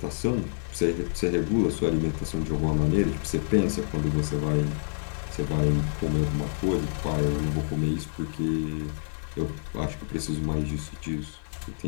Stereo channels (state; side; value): silent; right; 60 dB below the other